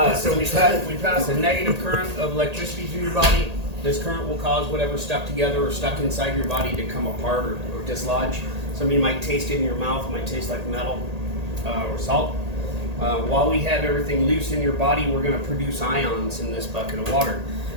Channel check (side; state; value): left; late; 1.8 ms